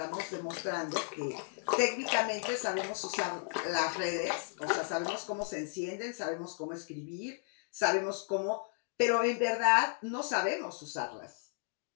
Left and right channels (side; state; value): right; silent; 55 dB below the other